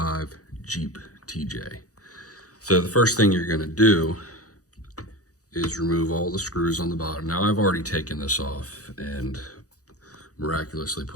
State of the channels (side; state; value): right; late; 0.66 ms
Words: Jeep TJ. So the first thing you're going to do is remove all the screws on the bottom. Now I've already taken this off and miraculously